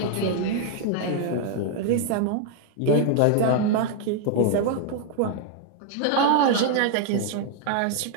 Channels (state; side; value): different; both; correlation 0.00